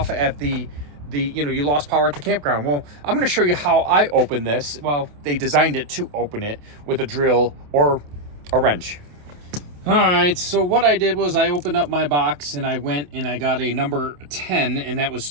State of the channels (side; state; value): left; late; 28 ms